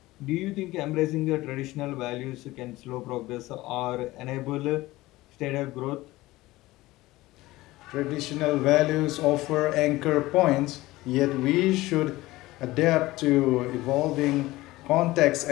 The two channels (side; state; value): right; quieter; 18.5 dB